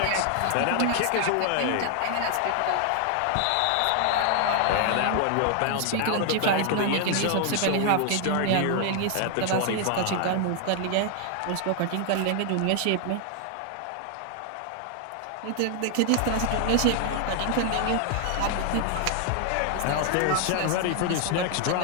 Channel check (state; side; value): different; both; correlation 0.00